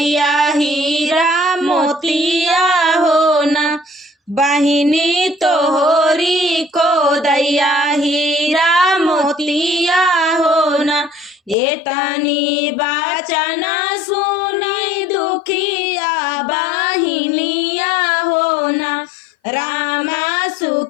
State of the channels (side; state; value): right; drops out; at 11.6 s